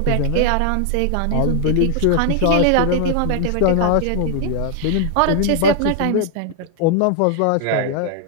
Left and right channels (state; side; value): different; both; correlation 0.00